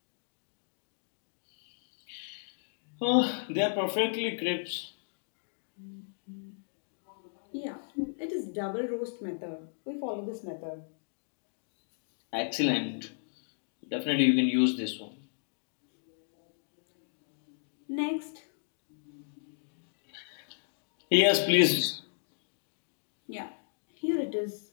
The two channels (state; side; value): silent; right; digital silence